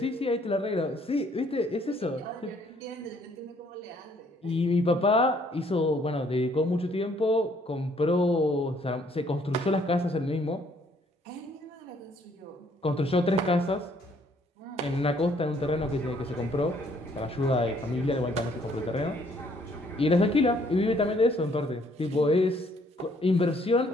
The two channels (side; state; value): both; normal; correlation 0.65